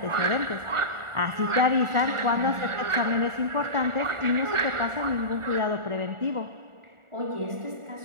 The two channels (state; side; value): late; left; 1.4 ms